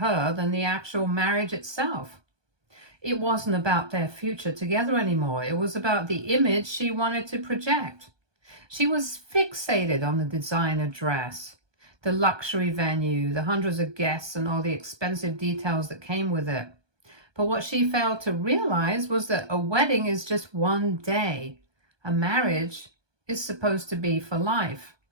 than the actual marriage itself. It wasn't about their future together anymore. It was about the image she wanted to project. She was fixated on the designer dress, the luxury venue, the hundreds of guests, and all the expensive details that came with it. But what she failed to realize was that a wedding is just one day. A marriage is supposed to be for life.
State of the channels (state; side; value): late; left; 1.2 ms